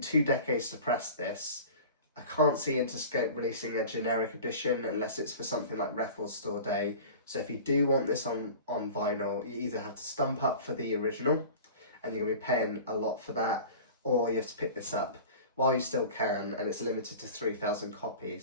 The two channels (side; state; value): both; inverted; correlation -0.39